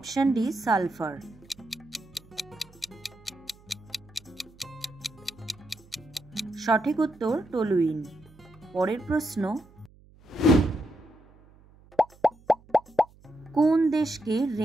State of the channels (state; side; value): noise; right; hum, 26 dB below the sound